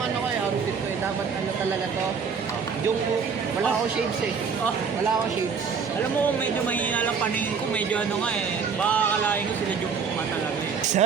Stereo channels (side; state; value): left; quieter; 5.9 dB